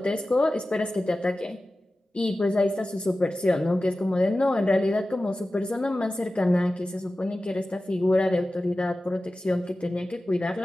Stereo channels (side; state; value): both; normal; correlation 0.95